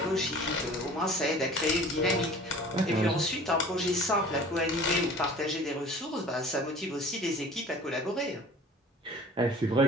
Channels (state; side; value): normal; both; correlation 0.45